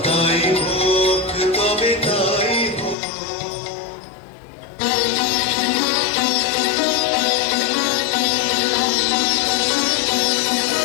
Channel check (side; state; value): right; drops out; at 3.0 s